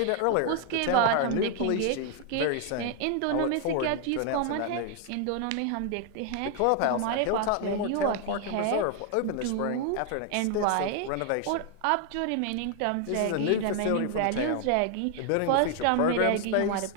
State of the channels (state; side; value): different; both; correlation 0.00